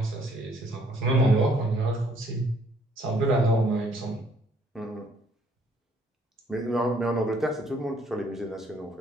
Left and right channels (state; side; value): normal; both; correlation 0.64